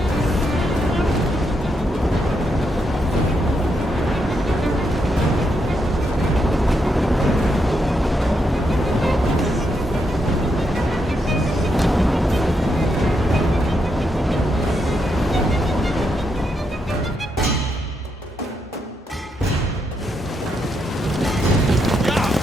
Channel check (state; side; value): normal; both; correlation 0.80